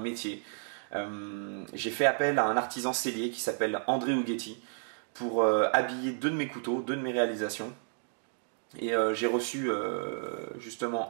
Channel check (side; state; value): left; silent; digital silence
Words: J'ai fait appel à un artisan sellier qui s'appelle André Ughetti pour habiller deux de mes couteaux, deux de mes réalisations. Et j'ai reçu justement